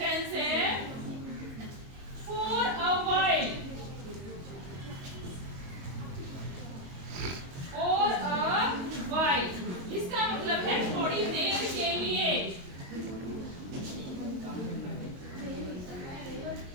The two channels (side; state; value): left; late; 22 ms